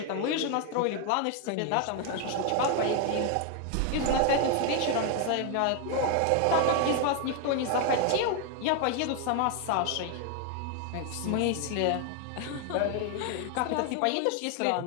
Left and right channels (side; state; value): both; different; correlation 0.01